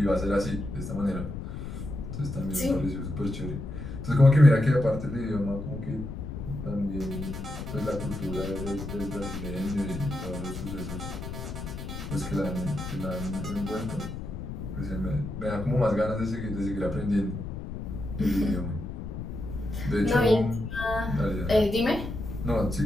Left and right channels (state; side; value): noise; left; rumble, 7 dB below the sound